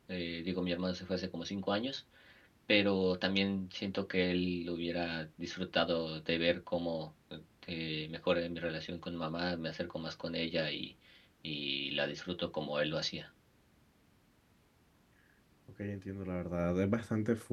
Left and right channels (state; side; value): identical; both; correlation 1.00